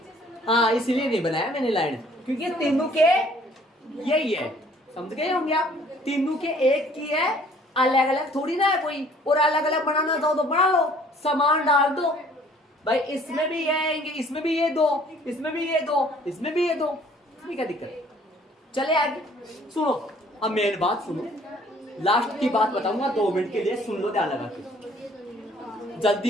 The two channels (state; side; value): normal; both; correlation 0.57